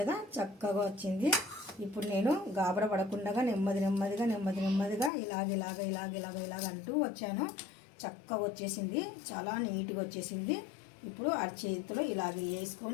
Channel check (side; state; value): right; drops out; at 5.1 s